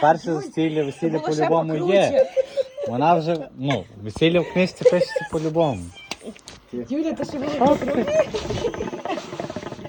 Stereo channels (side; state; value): both; identical; correlation 1.00